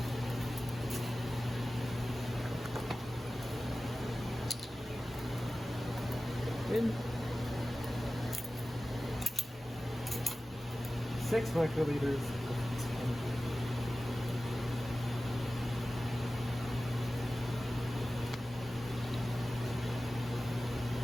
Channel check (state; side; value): normal; both; correlation 0.96